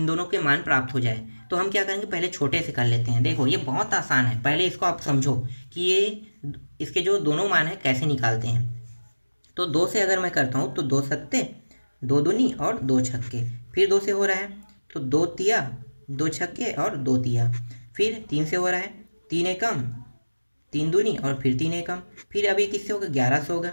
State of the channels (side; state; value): both; inverted; correlation -1.00